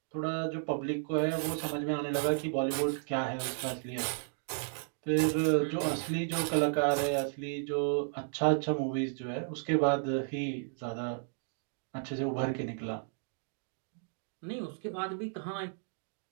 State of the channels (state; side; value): silent; left; digital silence